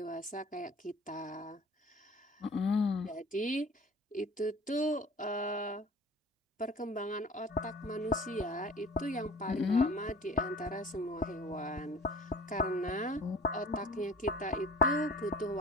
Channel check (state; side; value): normal; both; correlation 0.45